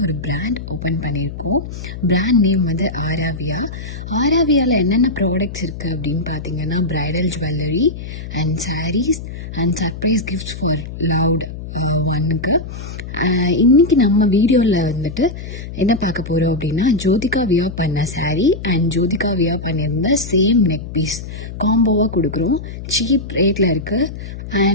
ஒரு பிராண்ட் ஓப்பன் பண்ணியிருக்கோம். பிராண்ட் நேம் வந்து ஆராவியா. ஆராவியாவில் என்னென்ன ப்ராடக்ட்ஸ் இருக்குது அப்படின்னு பார்த்தீங்கன்னா, bridal jewellery and sarees and surprise gifts for loved ஒன்னுக்கு. இன்றைக்கி நம்ம வீடியோவில் வந்துட்டு என்ன பார்க்க போகிறோம் அப்படின்னா, ஜோதிகா வியர் பண்ண சாரீ அண்ட் ஜோதிகா வியர் பண்ணியிருந்த சேம் நெக் பீஸ் காம்போவாக கொடுக்குறோம். சீப் ரேட்டில் இருக்குது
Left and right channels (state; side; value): noise; left; hum, 10 dB below the sound